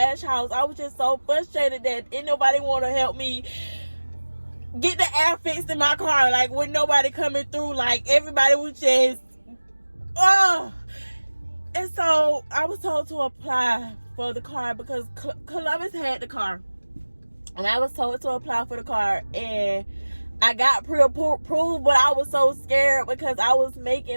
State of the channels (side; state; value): both; inverted; correlation -1.00